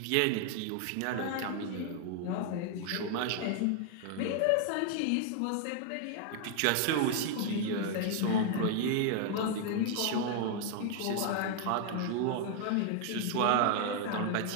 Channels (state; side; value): different; both; correlation 0.00